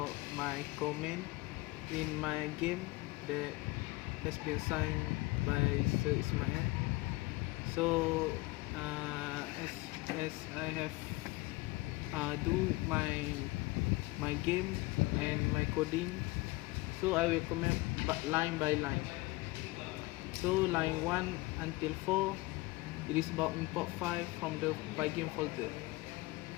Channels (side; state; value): right; quieter; 21.6 dB